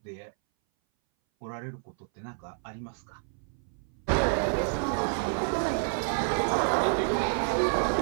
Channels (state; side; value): silent; left; 58 dB below the other